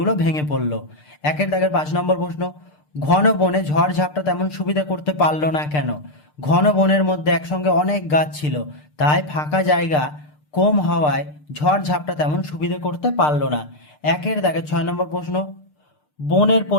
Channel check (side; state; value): right; late; 6.7 ms